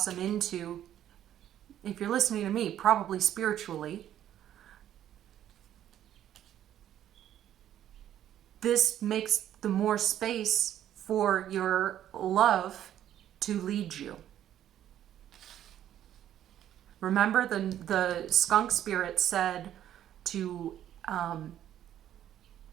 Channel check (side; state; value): left; quieter; 11.3 dB